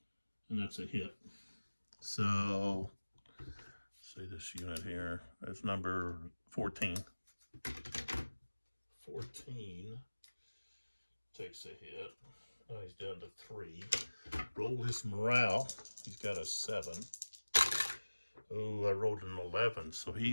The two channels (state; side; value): inverted; both; correlation -1.00